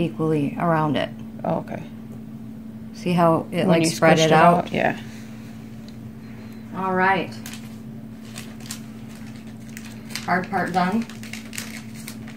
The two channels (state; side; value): identical; both; correlation 1.00